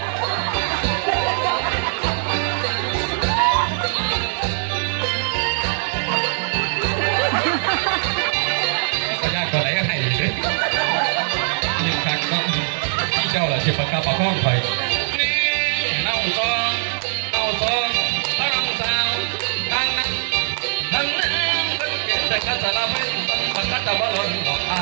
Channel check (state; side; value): silent; left; digital silence